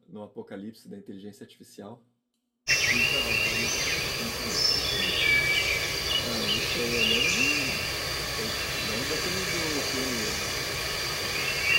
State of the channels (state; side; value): identical; both; correlation 1.00